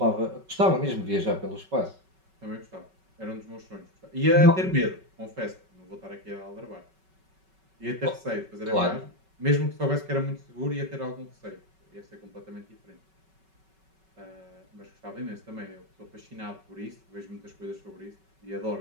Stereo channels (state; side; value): late; left; 5.3 ms